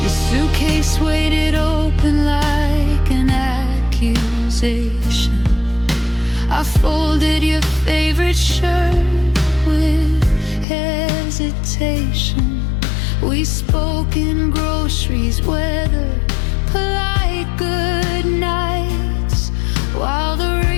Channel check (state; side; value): drops out; right; at 10.7 s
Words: Your suitcase weighted open like an accusation. I folded your favorite shirt with hesitation. We spoke in groceries, weather, polite good nights, while the